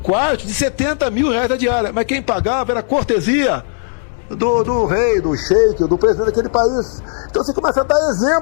de 70 mil reais a diária. Mas quem pagava era a cortesia do rei, do sheik, do presidente daquele país. Então você começa a dar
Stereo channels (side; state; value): right; silent; 65 dB below the other